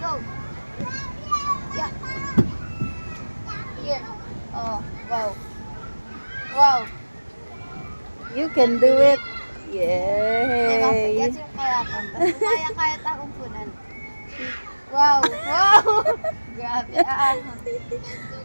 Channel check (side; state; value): both; inverted; correlation -1.00